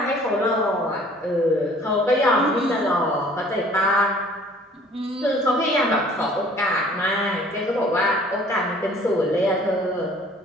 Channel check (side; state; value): both; normal; correlation 0.53